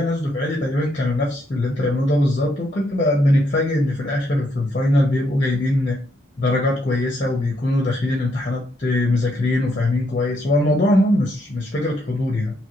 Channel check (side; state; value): both; normal; correlation 0.75